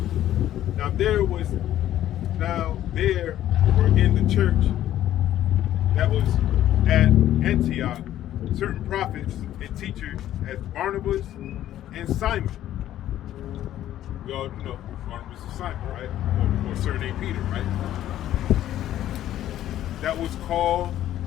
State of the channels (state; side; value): quieter; right; 12.5 dB